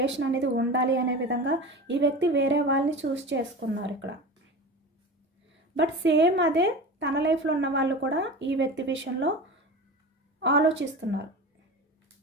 అనేది ఉండాలి అనే విధంగా ఈ వ్యక్తి వేరే వాళ్ళని చూస్ చేసుకున్నారు ఇక్కడ. బట్ సేమ్ అదే తన లైఫ్లో ఉన్న వాళ్ళు కూడా ఈ వ్యక్తి విషయంలో ఆలోచిస్తున్నారు.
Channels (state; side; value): normal; both; correlation 0.31